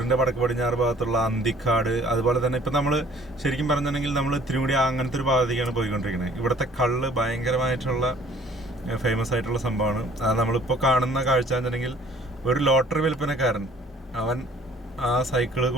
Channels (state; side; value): normal; both; correlation 0.55